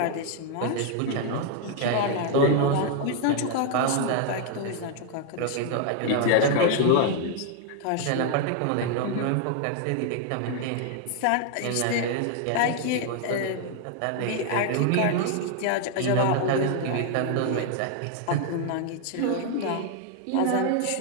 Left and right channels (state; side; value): different; both; correlation 0.00